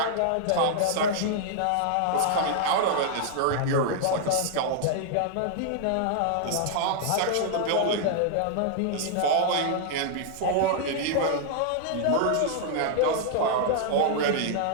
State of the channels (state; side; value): different; both; correlation -0.01